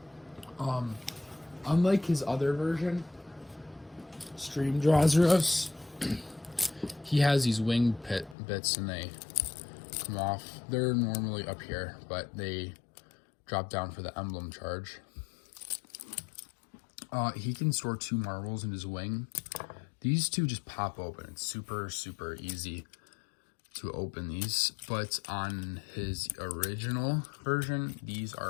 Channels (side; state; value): right; drops out; at 8.3 s